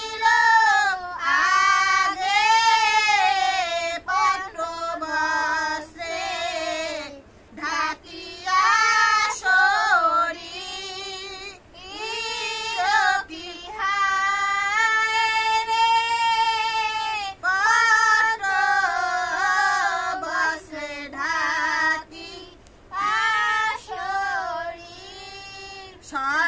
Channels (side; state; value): both; identical; correlation 1.00